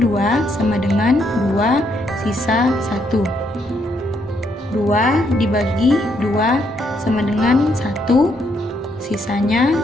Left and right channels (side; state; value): both; normal; correlation 0.74